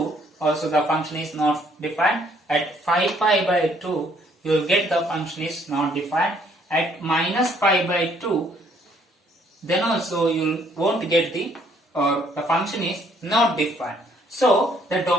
also the function is not defined. At 5 pi by 2, you will get the function is not defined. At minus pi by 2, then also you won't get the function is not defined. So, the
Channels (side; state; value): both; normal; correlation 0.65